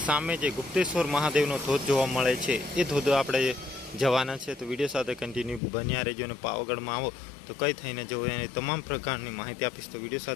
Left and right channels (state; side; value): drops out; right; at 5.6 s